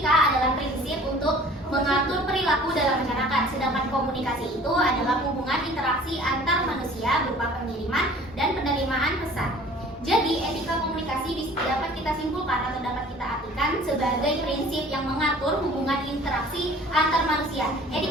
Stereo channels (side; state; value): both; normal; correlation 0.49